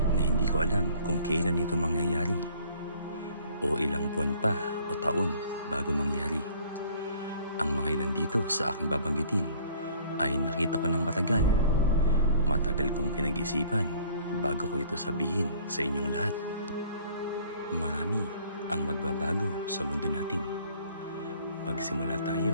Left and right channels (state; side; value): inverted; both; correlation -0.54